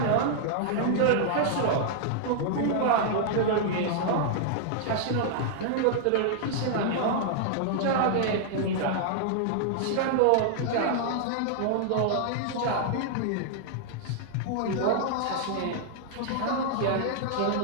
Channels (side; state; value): both; different; correlation -0.01